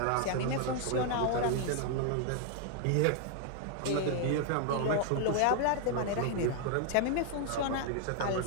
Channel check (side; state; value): both; different; correlation 0.00